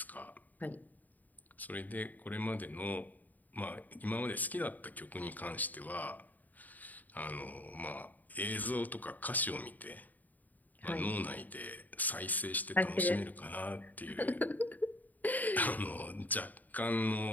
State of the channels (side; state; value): right; late; 0.082 ms